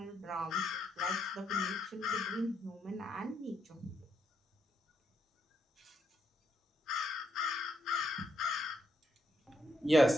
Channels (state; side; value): normal; both; correlation 0.78